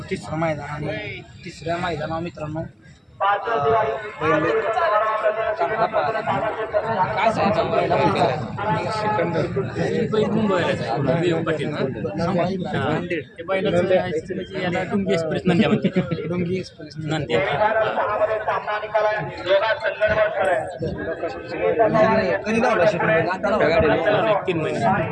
तिसरं मैदान आणि तिसऱ्या मैदानावर मित्रांनो चांगला पाहिला काय सांगायचं याला डुंगी एक्सप्रेस नंद्या म्हणते डोंगी एक्सप्रेस नंद्या कधी धावला शेकडे आता धावला 3 महिने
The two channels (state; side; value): identical; both; correlation 1.00